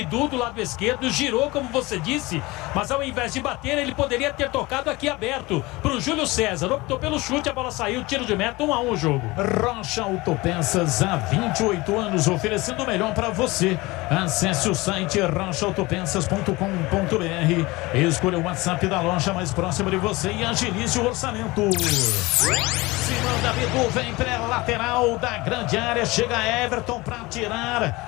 do lado esquerdo, girou como você disse, mas ao invés de bater, ele poderia ter tocado aqui aberto pro Júlio César. Optou pelo chute, a bola saiu, tiro de meta, 1-1 o jogo. Rocha Autopeças, há 28 anos, oferecendo o melhor para você. Acesse o site rochaautopeças.com.br, escolha o WhatsApp da loja mais próxima de você e agilize o orçamento. Simão Davidu vem pela lateral da grande área, chega Everton para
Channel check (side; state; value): right; quieter; 21.9 dB